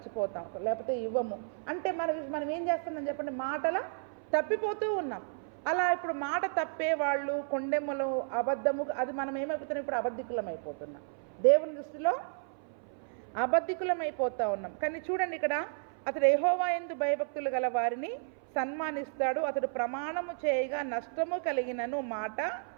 లేకపోతే ఇవ్వము. అంటే మనం ఏం చేస్తున్నాం చెప్పండి? మాటల తప్పిపోతూ ఉన్నాం. అలా ఇప్పుడు మాట తప్పే వాళ్ళు, కొండెమ్మలు, అబద్ధము, అది మనం ఏమైపోతున్నాం? ఇప్పుడు అబద్ధికులం అయిపోతున్నాం. దేవుని దృష్టిలో అబద్ధికులం అయిపోతూ ఉన్నాం. కానీ చూడండి, ఇక్కడ అతడు యెహోవా యందు భయభక్తులు గల వారిని సన్మానిస్తాడు, అతడు ప్రమాణము చేయగా నష్టము కలిగినను మాట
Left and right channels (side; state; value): left; silent; 56 dB below the other